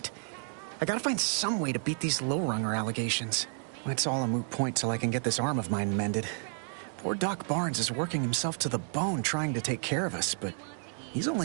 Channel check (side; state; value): left; silent; 57 dB below the other